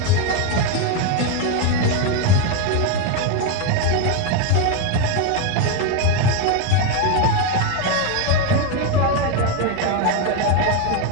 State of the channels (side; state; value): both; different; correlation 0.02